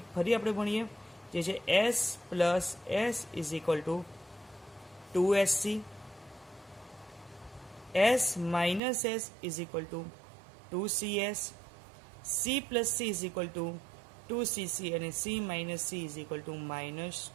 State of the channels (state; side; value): drops out; left; at 8.8 s